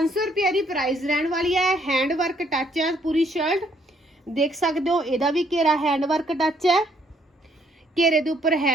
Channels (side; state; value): both; normal; correlation 0.68